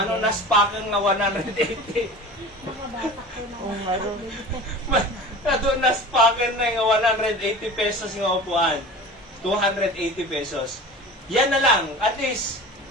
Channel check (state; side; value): normal; both; correlation 0.36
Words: pa kang nga 180. Nadunas pa kang na nga 180 pesos nga upuan. 280 pesos. Yan na lang. At least,